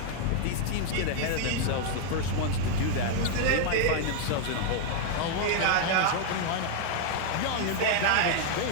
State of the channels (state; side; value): different; both; correlation 0.00